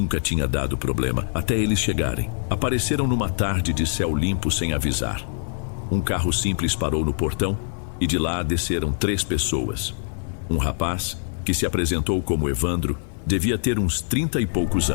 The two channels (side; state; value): right; silent; 55 dB below the other